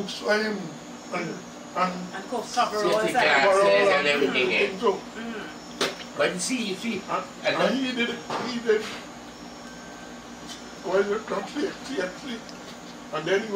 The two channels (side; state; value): both; identical; correlation 1.00